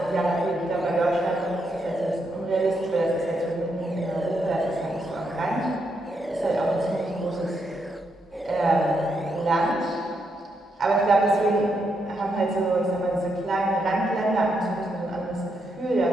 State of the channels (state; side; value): normal; both; correlation 0.80